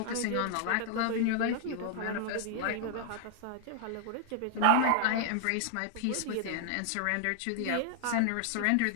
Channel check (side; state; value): both; different; correlation 0.00